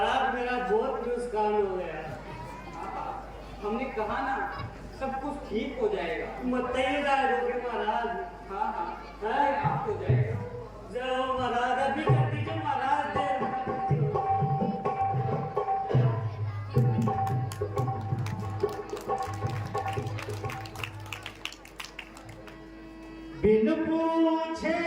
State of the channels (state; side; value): identical; both; correlation 1.00